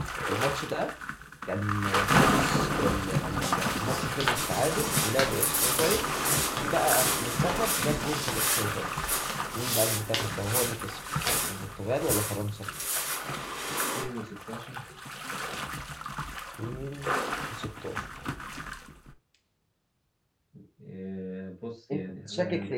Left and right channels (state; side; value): identical; both; correlation 1.00